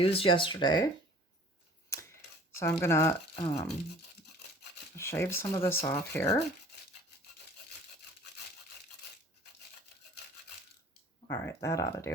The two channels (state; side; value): normal; both; correlation 0.49